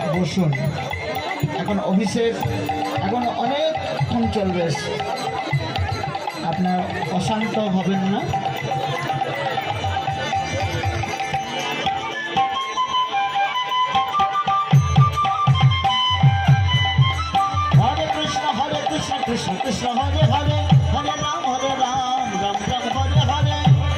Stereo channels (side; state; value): both; identical; correlation 1.00